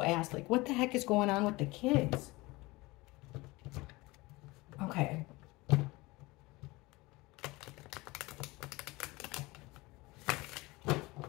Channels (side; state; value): right; quieter; 22.1 dB